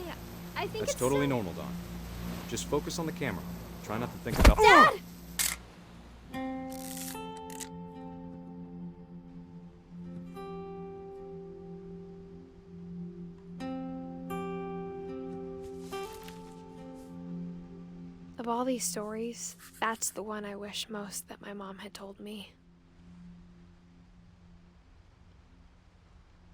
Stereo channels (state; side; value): identical; both; correlation 1.00